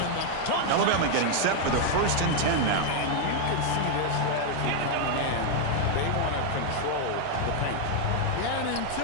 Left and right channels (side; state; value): both; different; correlation 0.00